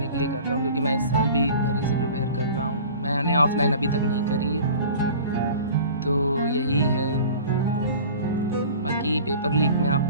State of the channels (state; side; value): inverted; both; correlation -0.42